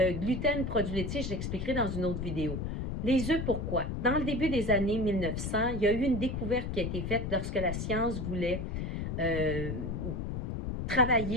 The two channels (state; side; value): noise; left; rumble, 3 dB below the sound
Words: gluten, produits laitiers, je l'expliquerai dans une autre vidéo. Les œufs, pourquoi? Dans le début des années 1900, il y a eu une découverte qui a été faite lorsque la science voulait